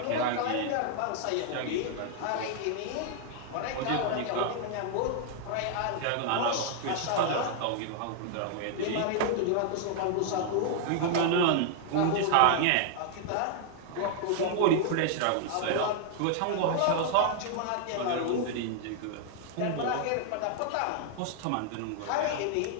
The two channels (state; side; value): different; both; correlation 0.00